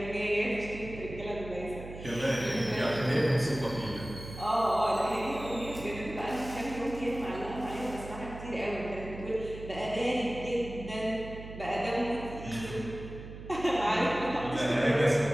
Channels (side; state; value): right; noise; hum, 12 dB below the sound